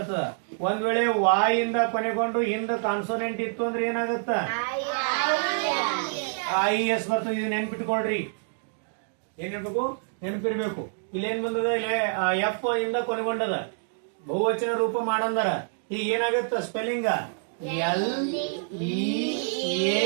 ಒಂದ್ ವೇಳೆ ವಾಯ್ ಇಂದ ಕೊನೆಗೊಂಡು ಹಿಂದ ಕಾನ್ಸೋನೆಂಟ್ ಇತ್ತು ಅಂದ್ರೆ ಏನಾಗುತ್ತ? ಐ ಎಸ್ ಬರ್ತದೆ. ಇದು ನೆನ್ಪಿಟ್ಕೊಳ್ರಿ. ಏನ್ ಹೇಳ್ಬೇಕು? ನೆನಪಿರ್ಬೇಕು. ಇಲ್ಲಿ ಏನ್ ಬಂದದ? ಇಲ್ಲಿ ಎಫ್ ಇಂದ ಕೊನೆಗೊಂಡದ, ಬಹುವಚನ ರೂಪ ಮಾಡಂದರ. ಈಗ ಏನಾಗತ್ತ? ಸ್ಪೆಲ್ಲಿಂಗ್ ಎಲ್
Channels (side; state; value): left; silent; digital silence